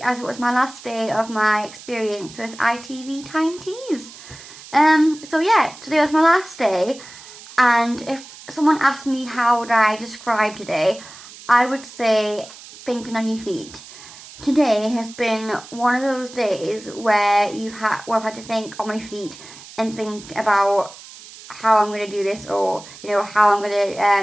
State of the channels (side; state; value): right; noise; hiss, 18 dB below the sound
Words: as it was my last day of my experience with ITV Tyne. So yeah, today was my last day, and if someone asked me how would I describe today, I would say thinking on your feet. Today has been one of those days where I've had to think on my feet and think about how I'm going to do this, or how I'm going